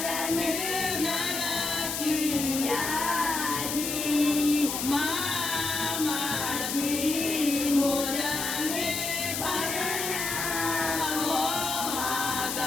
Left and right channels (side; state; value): left; noise; hiss, 3 dB below the sound